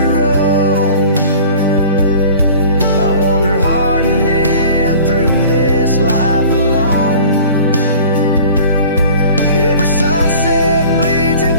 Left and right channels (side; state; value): both; inverted; correlation -0.44